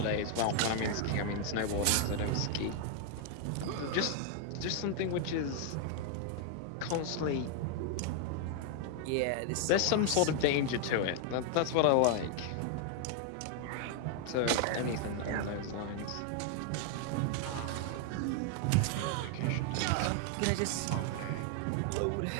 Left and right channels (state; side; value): different; both; correlation 0.00